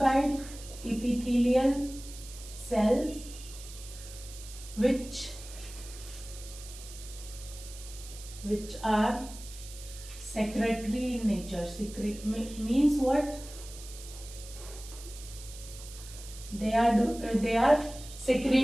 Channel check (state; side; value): noise; right; hiss, 15 dB below the sound